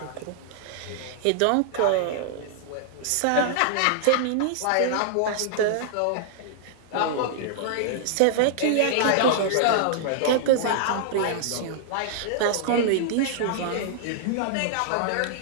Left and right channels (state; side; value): different; both; correlation -0.01